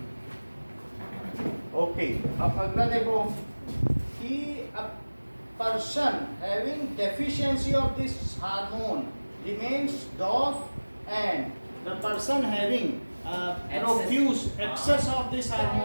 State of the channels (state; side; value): inverted; both; correlation -1.00